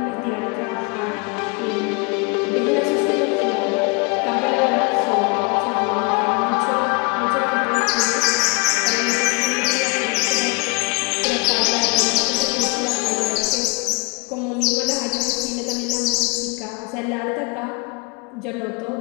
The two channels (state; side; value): quieter; right; 29.3 dB